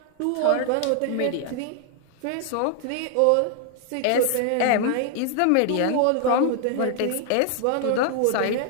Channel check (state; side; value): different; both; correlation 0.00